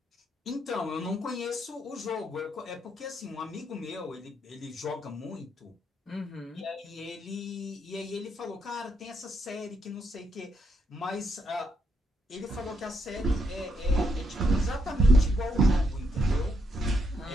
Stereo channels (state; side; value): normal; both; correlation 0.79